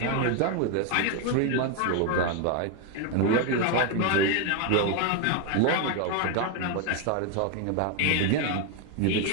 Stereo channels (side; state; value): both; different; correlation 0.01